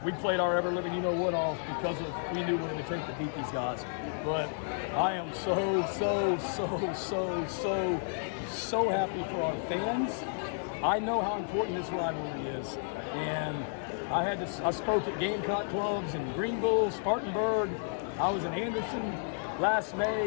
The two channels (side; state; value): right; silent; 57 dB below the other